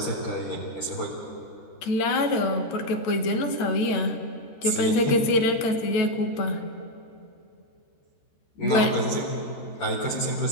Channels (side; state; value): right; late; 13 ms